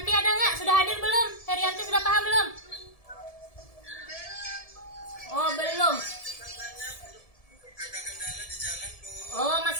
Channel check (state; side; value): late; right; 1.7 ms